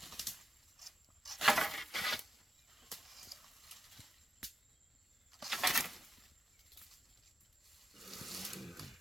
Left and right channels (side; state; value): both; normal; correlation 0.89